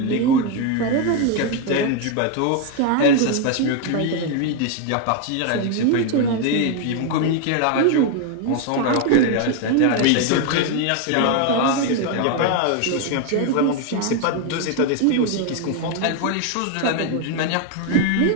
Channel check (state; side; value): different; both; correlation 0.01